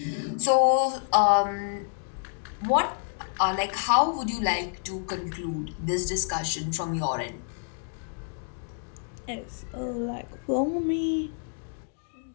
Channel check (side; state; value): right; silent; digital silence